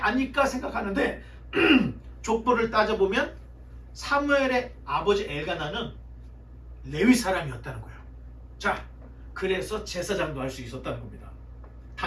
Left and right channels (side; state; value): both; identical; correlation 1.00